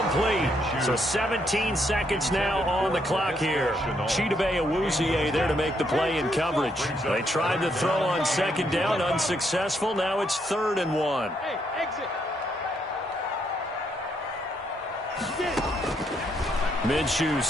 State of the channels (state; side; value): normal; both; correlation 0.75